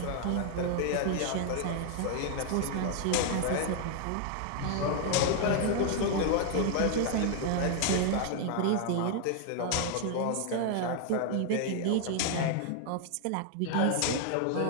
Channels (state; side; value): different; both; correlation 0.00